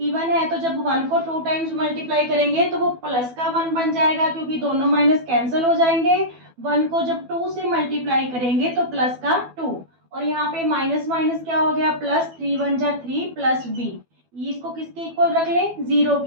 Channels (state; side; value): late; left; 12 ms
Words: है, तो जब 1 को 2 टाइम्स मल्टीप्लाई करेंगे तो वो प्लस का 1 बन जाएगा, क्योंकि दोनों माइनस कैंसिल हो जाएंगे। 1 को जब 2 से मल्टीप्लाई करेंगे तो प्लस का 2, और यहाँ पे माइनस माइनस क्या हो गया, प्लस, 3 1 जा 3 प्लस b। इसको किसके इक्वल रख ले, 0